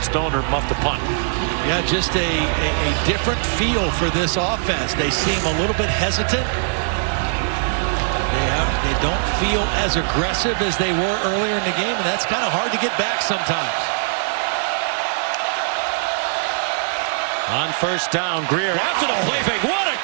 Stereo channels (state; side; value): silent; left; digital silence